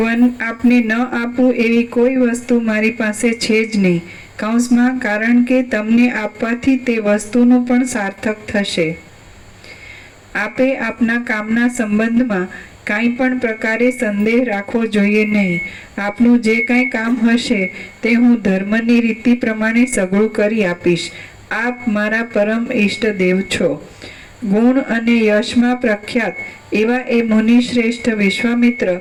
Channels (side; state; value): both; identical; correlation 1.00